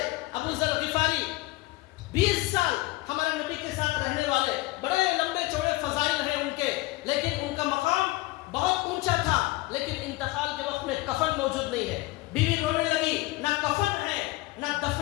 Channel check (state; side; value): quieter; right; 20.0 dB